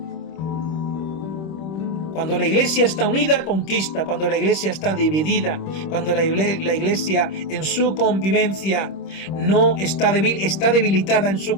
Cuando la iglesia está unida, conquista. Cuando la iglesia está dividida, cuando la iglesia en su convivencia no está débil, está debilitada en su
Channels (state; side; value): late; right; 26 ms